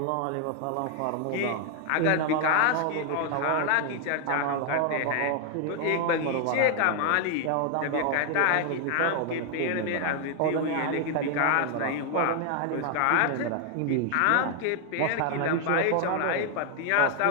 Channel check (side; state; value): both; different; correlation 0.00